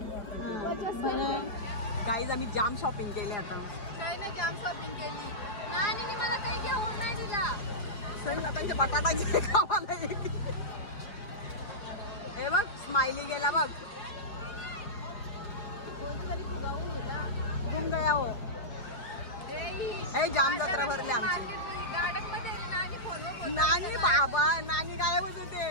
गाईज आम्ही जाम शॉपिंग केले. आता काही नाही जाम शॉपिंग केली. नानी मला काही घेऊन नाही दिला. सही आता बटाटा खावाला. हे बघ स्माइली गेला बघ. ए जाम जत्रा भरली आमची. नानी बाबा नानी गायबच होते.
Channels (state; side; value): late; right; 4.9 ms